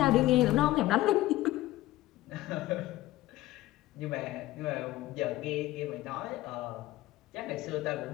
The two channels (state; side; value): quieter; right; 16.5 dB